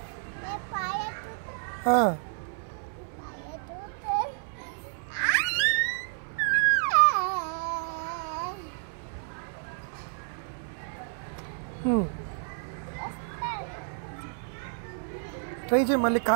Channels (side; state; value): left; silent; 58 dB below the other